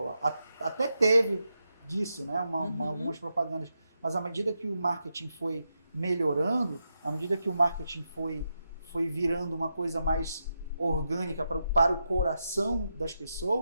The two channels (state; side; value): inverted; both; correlation -0.86